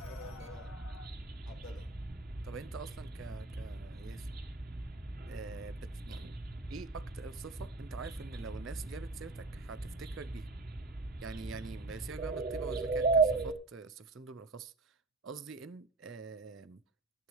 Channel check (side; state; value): left; quieter; 3.4 dB